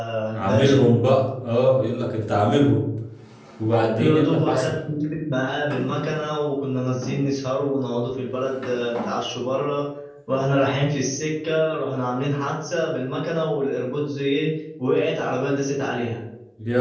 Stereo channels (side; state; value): both; identical; correlation 1.00